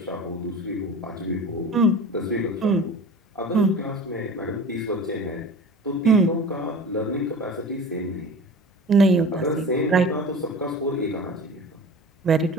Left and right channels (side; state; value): both; normal; correlation 0.38